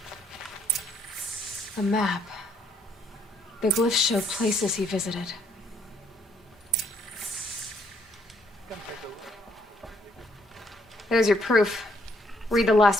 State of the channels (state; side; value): normal; both; correlation 0.68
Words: A map. The glyphs show places he visited. There's your proof. Read the